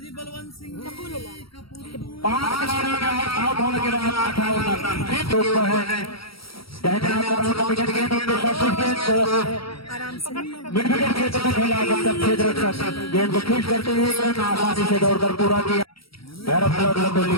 5 खिलाड़ियों का आउट होने के बाद 58 रन है। मिड विकेट क्षेत्र में खेला, गेंद को खींच करते हुए आसानी से दौड़कर पूरा किया। भैरव कोहली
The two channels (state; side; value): late; right; 0.75 ms